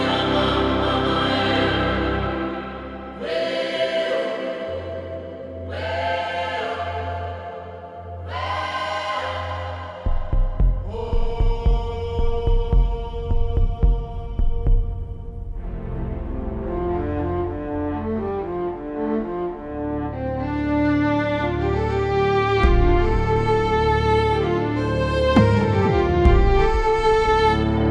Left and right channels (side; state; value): both; identical; correlation 1.00